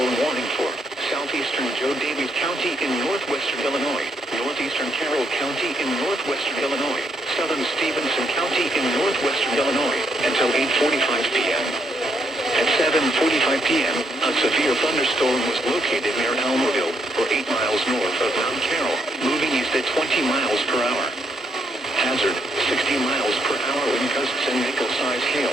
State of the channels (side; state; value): both; normal; correlation 0.75